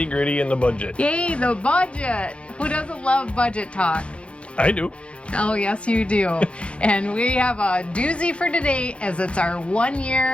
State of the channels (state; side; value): late; right; 0.060 ms